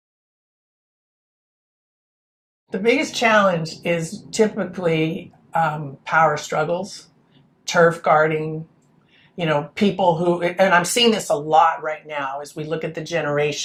The biggest challenge is typically power struggles, turf guarding, people who, and I'm seeing this a lot right now as we look at the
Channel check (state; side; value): identical; both; correlation 1.00